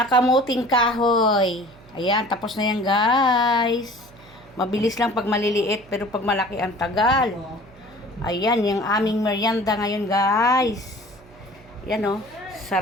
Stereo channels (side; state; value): right; noise; hum, 25 dB below the sound